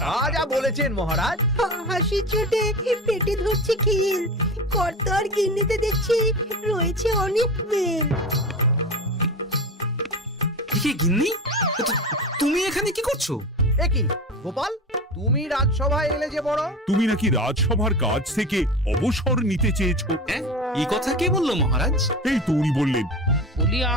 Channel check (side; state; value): both; normal; correlation 0.28